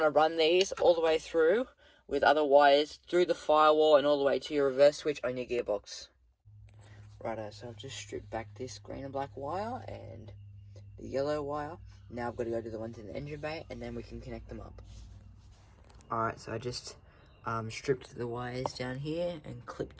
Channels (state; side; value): identical; both; correlation 1.00